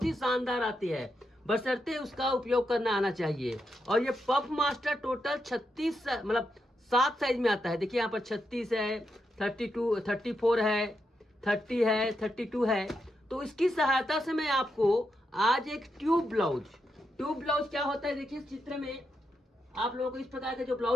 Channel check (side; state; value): both; normal; correlation 0.84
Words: ही शानदार आती है, बशर्ते उसका उपयोग करना आना चाहिए। और ये पफ मास्टर टोटल 36 मतलब 7 साइज में आता है। देखिए यहाँ पर 36 है, 32, 34 है, 30 है, 32 है। तो इसकी सहायता से मैं आपको आज एक ट्यूब ब्लाउज क्या होता है, देखिए इस चित्र में आप लोगों को इस प्रकार के जो